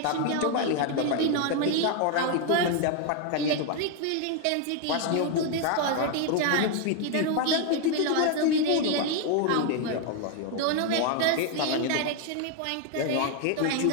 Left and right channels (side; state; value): both; different; correlation 0.01